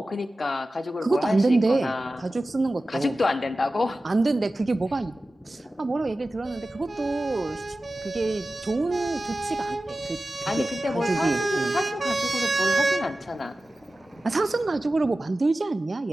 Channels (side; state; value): both; normal; correlation 0.95